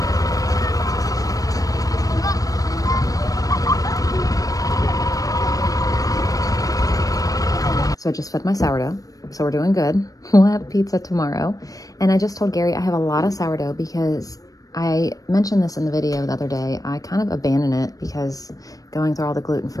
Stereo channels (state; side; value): late; right; 0.17 ms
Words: So I just fed my sourdough, so we're doing good. We'll have pizza tomorrow. And I just told Gary I have a lot of sourdough because I mentioned this in the video the other day. I kind of abandoned it because going through all the